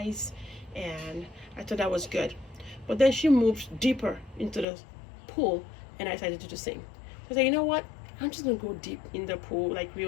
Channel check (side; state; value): right; drops out; at 4.7 s